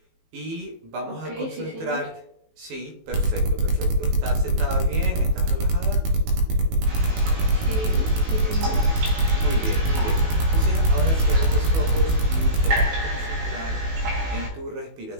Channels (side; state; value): left; late; 18 ms